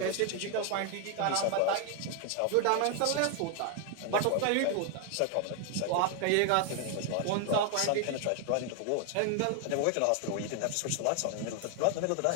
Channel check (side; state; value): both; different; correlation 0.00